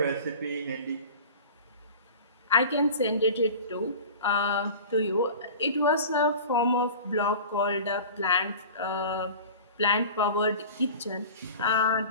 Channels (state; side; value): inverted; both; correlation -0.38